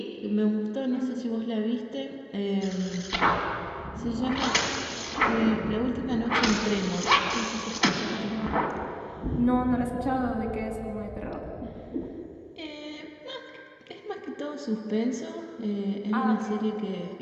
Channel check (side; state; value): both; identical; correlation 1.00